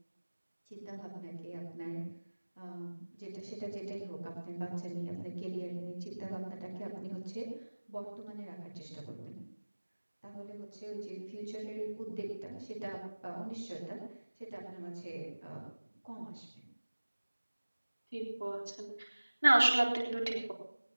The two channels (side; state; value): both; inverted; correlation -1.00